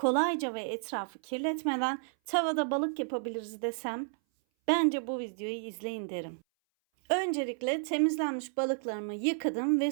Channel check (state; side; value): silent; left; 57 dB below the other